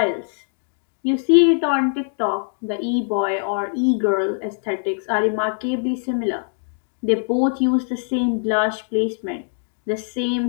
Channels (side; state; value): right; silent; digital silence